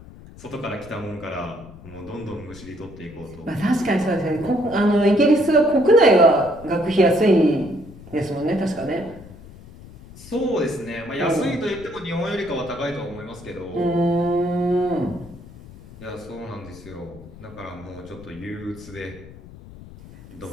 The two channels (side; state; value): left; noise; rumble, 18 dB below the sound